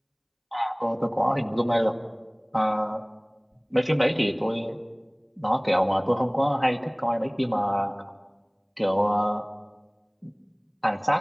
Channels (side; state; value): both; identical; correlation 1.00